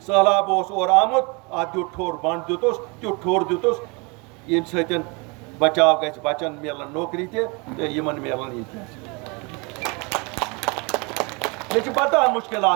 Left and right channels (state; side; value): quieter; left; 29.6 dB